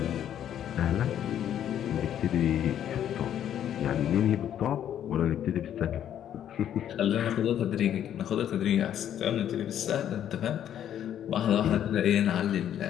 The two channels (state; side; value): quieter; right; 10.3 dB